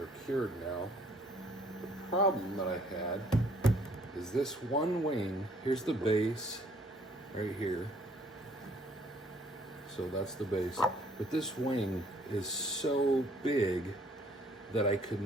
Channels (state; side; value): normal; both; correlation 0.62